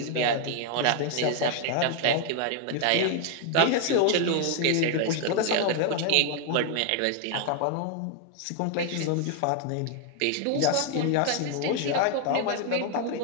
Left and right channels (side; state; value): both; different; correlation 0.00